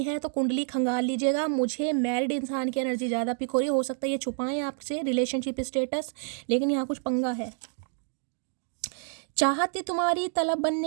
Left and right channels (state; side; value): silent; left; digital silence